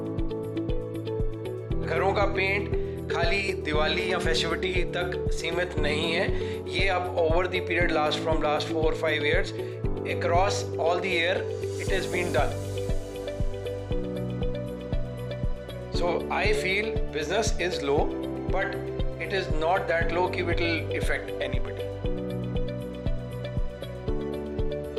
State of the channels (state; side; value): identical; both; correlation 1.00